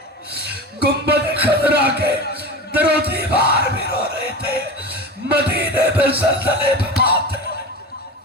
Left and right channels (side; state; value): both; normal; correlation 0.28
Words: گنبد خضرا کے در و دیوار بھی رو رہے تھے, مدینے میں زلزلے بپا تھے.